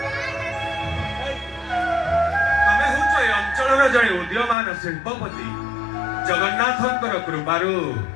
ତମେ ହେଉଛ ଏ ଅଞ୍ଚଳର ଜଣେ ଉଦୀୟମାନ ଶିଳ୍ପପତି। ଜଗନ୍ନାଥଙ୍କର କୃପାରୁ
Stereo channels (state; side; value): drops out; right; at 4.5 s